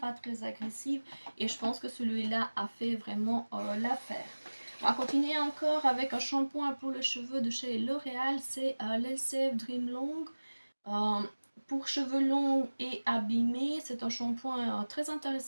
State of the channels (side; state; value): both; inverted; correlation -1.00